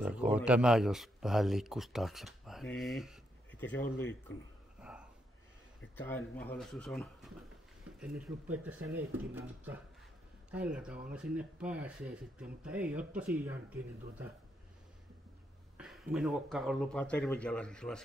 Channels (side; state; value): both; normal; correlation 0.78